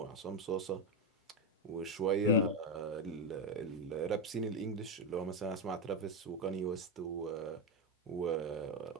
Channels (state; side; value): normal; both; correlation 0.08